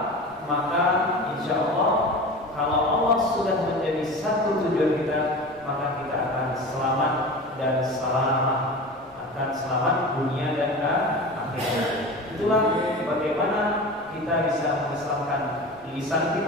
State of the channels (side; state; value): left; noise; rumble, 28 dB below the sound